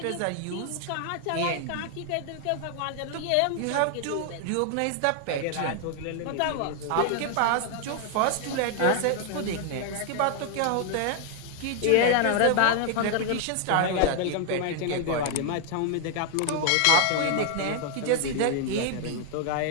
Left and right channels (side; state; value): both; different; correlation 0.00